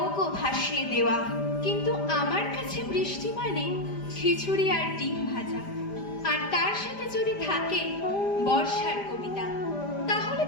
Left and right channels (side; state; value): right; late; 5.0 ms